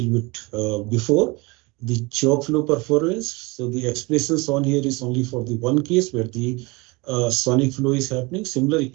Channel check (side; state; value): left; quieter; 25.6 dB